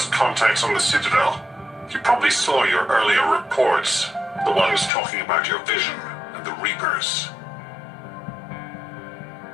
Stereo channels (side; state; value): right; drops out; at 4.9 s